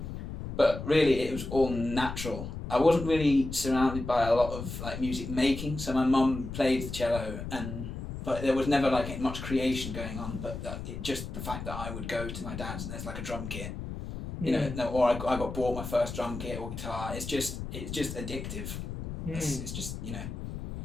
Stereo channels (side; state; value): left; noise; rumble, 7 dB below the sound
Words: but really it was all natural. I wasn't really surrounded by a lot of like music making, so my mum played the cello, but there was never like much creation going on. But just the fact that I would go to my dad's and there's like a drum kit, or I got bought my first drum kit or guitar. It's just addictive. It's just